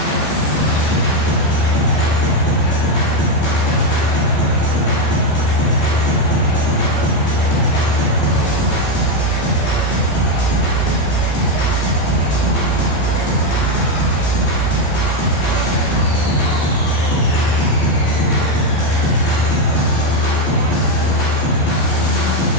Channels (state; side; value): late; right; 14 ms